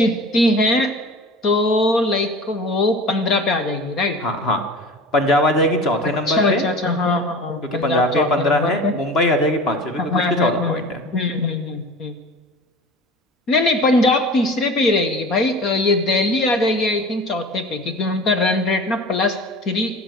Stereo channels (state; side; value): normal; both; correlation 0.38